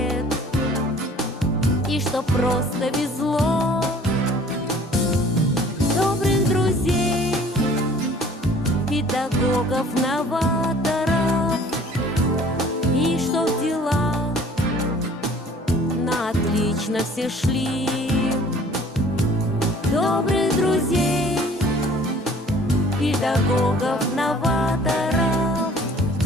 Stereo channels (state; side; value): normal; both; correlation 0.52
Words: и чтоб просто везло, добрых друзей, педагогов, новаторов, и чтоб дела на отлично все шли. Добрых друзей, педагогов, новаторов,